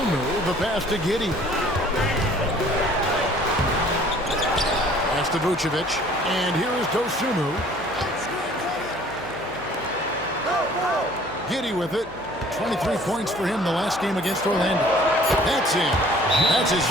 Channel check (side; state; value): left; noise; hum, 23 dB below the sound